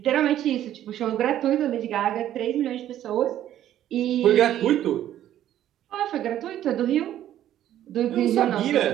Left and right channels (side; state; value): left; quieter; 11.9 dB